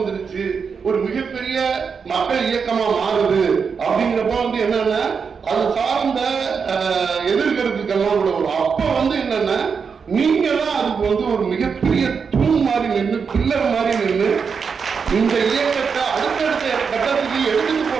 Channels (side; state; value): left; quieter; 5.9 dB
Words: ஒரு மிகப்பெரிய மக்கள் இயக்கமா மாறுது அப்படிங்கிறப்ப வந்து என்னன்னா அது சார்ந்த எதிர்கருத்துக்கெல்லாம் கூட வரும். அப்ப வந்து என்னன்னா நீங்க தான் அதுக்கு வந்து ஒரு மிகப்பெரிய தூண் மாதிரி நின்று பில்லர் மாதிரி நின்று இந்த இயக்கத்தை அடுத்தடுத்த கட்டத்துக்கு எடுத்துட்டு